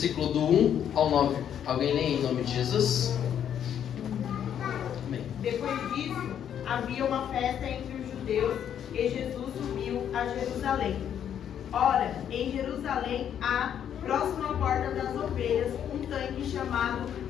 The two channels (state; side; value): quieter; right; 9.3 dB